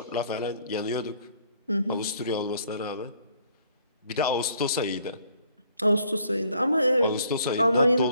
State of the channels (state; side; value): inverted; both; correlation -0.63